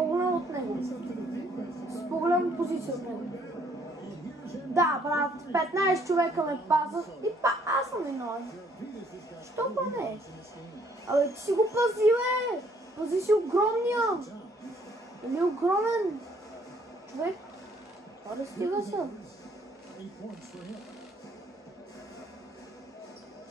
от него. С по-голяма позиция от него. Да, брат, 15 човека ме пазат и аз съм виновен. Що па не? Абе, ти си го пази, бе! Пази си огромния! Или огромен човек? Аре, стига се.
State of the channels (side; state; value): both; normal; correlation 0.65